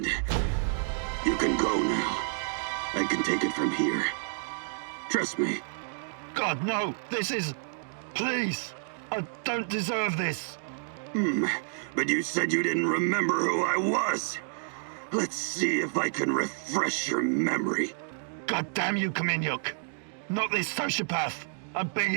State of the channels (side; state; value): left; silent; digital silence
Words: You can go now. I can take it from here. Trust me. God, no! This is... Please! I don't deserve this! But you said you didn't remember who I was. Let's see if I can refresh your memory. God damn you, Kaminyuk! Not this sociopath! I'm